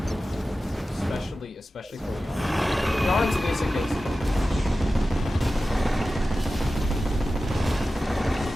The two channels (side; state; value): both; normal; correlation 0.94